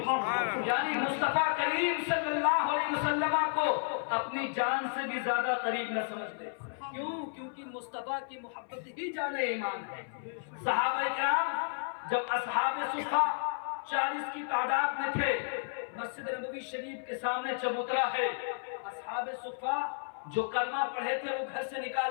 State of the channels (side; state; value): right; silent; 56 dB below the other